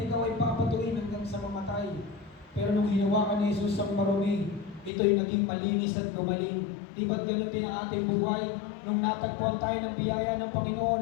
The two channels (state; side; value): drops out; right; at 4.9 s